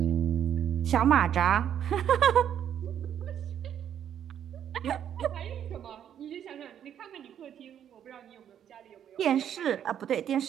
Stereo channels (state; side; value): quieter; left; 9.6 dB